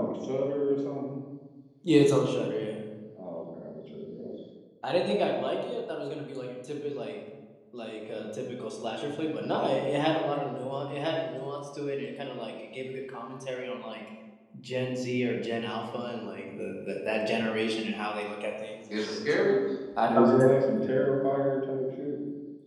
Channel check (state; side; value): identical; both; correlation 1.00